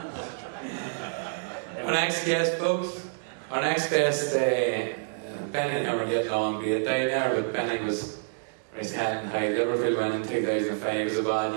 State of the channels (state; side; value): silent; left; digital silence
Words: Our next guest, folks. Our next guest, Benny never get along great down there, but Benny was raised head and high. Liverpool winning in 2005 was a